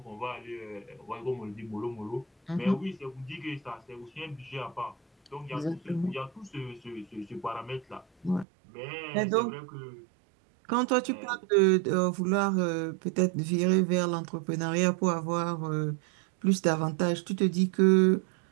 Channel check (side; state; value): left; drops out; at 8.5 s